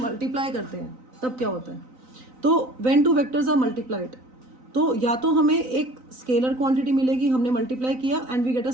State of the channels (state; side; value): late; left; 3.9 ms